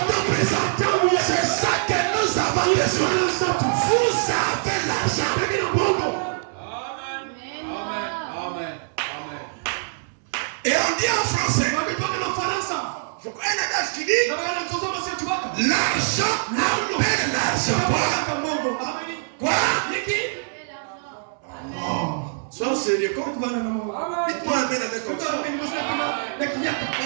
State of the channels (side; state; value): left; silent; digital silence